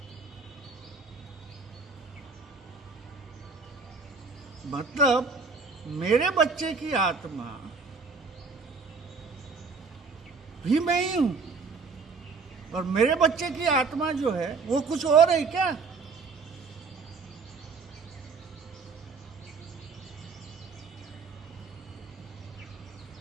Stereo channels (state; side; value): quieter; left; 4.7 dB